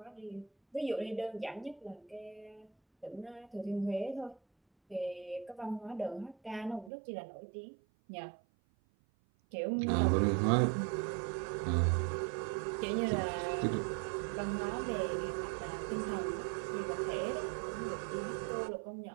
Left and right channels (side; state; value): left; drops out; at 6.9 s